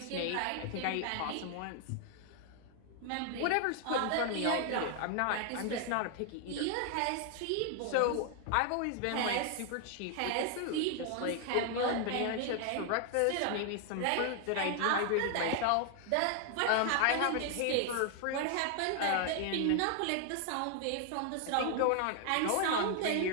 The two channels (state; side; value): different; both; correlation 0.00